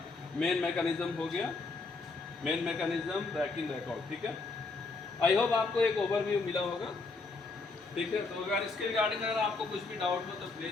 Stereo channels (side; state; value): right; quieter; 3.8 dB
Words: मेन मैकेनिज्म हो गया, मेन मैकेनिज्म रैक इन रैक आउट। ठीक है। आई होप आपको एक ओवरव्यू मिला होगा। ठीक है। तो अगर इसके रिगार्डिंग अगर आपको कुछ भी डाउट हो तो